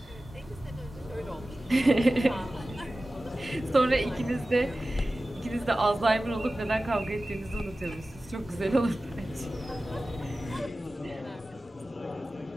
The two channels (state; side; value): normal; both; correlation 0.95